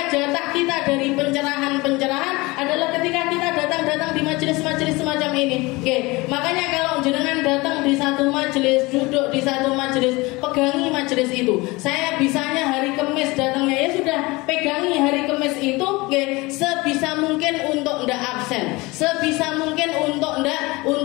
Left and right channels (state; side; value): quieter; right; 23.1 dB